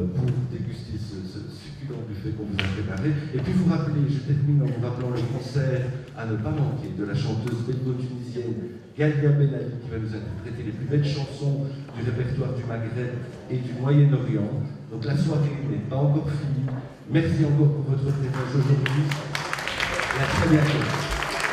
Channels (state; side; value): identical; both; correlation 1.00